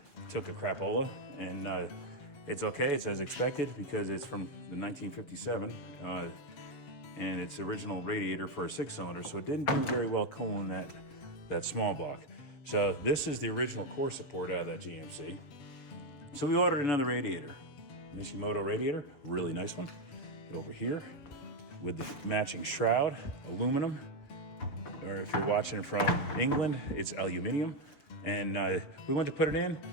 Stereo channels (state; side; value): late; right; 6.9 ms